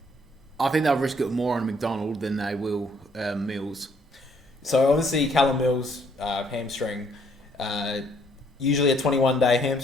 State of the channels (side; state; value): both; normal; correlation 0.66